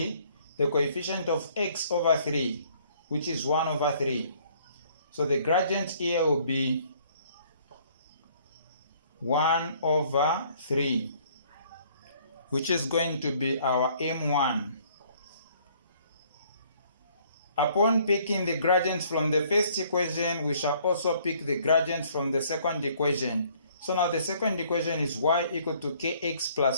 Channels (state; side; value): inverted; both; correlation -0.61